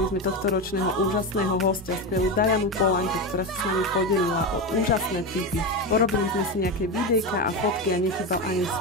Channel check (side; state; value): both; normal; correlation 0.17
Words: sme tohto ročného úžasného hostia, skvelú Dianu Polanku, ktorá sa s nami podelila o úžasné tipy. Porobili sme si nejaké videjka a fotky a nechýbal ani